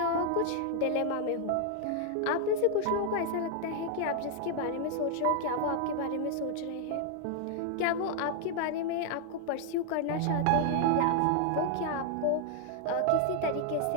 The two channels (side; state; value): both; different; correlation 0.00